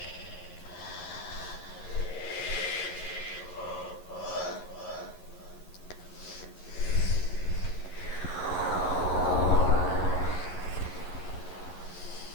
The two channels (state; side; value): late; right; 11 ms